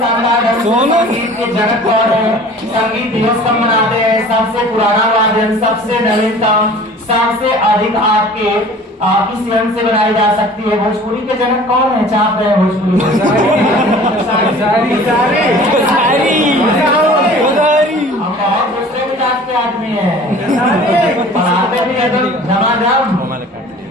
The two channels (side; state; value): both; normal; correlation 0.46